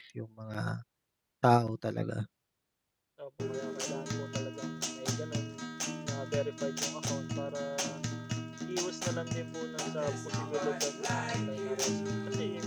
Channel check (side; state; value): both; identical; correlation 1.00